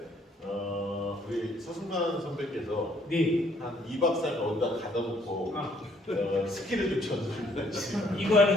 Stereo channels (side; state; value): both; normal; correlation 0.65